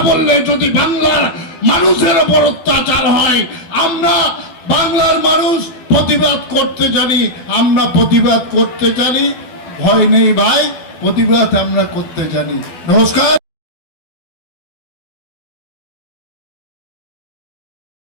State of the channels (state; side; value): late; right; 12 ms